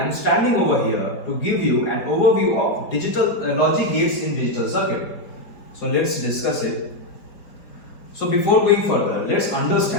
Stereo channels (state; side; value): late; right; 4.7 ms